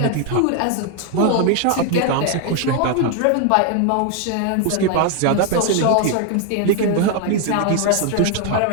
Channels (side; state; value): both; different; correlation 0.01